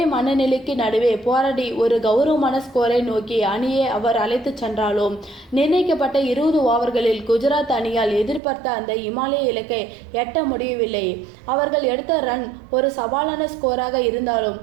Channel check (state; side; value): drops out; left; at 8.4 s